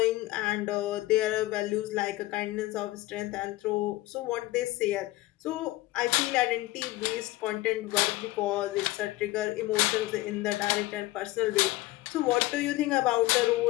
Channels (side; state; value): right; quieter; 18.4 dB